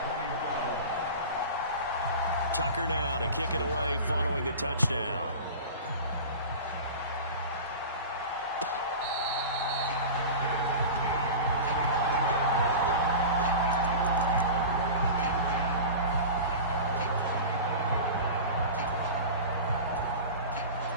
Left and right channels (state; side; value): inverted; both; correlation -0.32